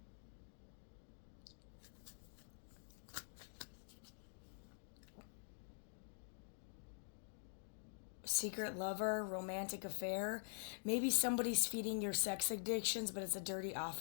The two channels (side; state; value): right; silent; digital silence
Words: Secret lover, romantic affair. Maybe somebody's feeding your sex addictions, but it's a dirty